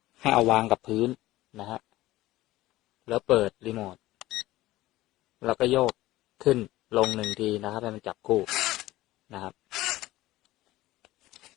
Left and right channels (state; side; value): quieter; right; 17.0 dB